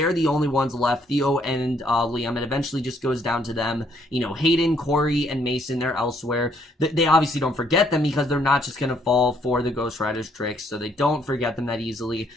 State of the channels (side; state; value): both; normal; correlation 0.68